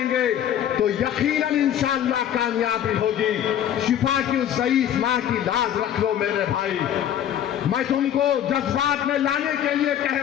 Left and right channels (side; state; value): right; quieter; 10.4 dB